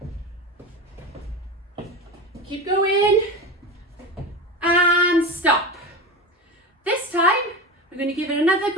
Keep going and stop. This time we're going to give it another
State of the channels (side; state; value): both; normal; correlation 0.25